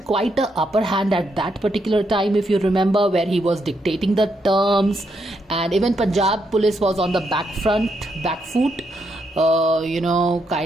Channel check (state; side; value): normal; both; correlation 0.79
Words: quite a upper hand at that particular time, if you remember, where he was dictating the terms, and even Punjab police was on the back foot.